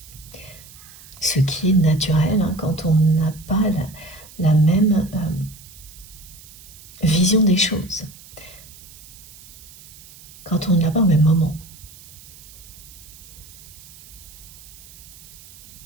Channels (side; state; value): right; noise; hiss, 20 dB below the sound